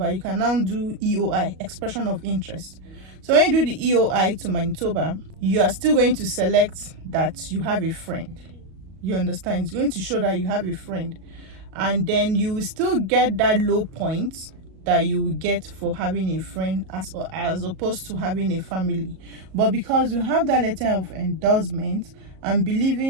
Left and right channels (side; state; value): left; late; 37 ms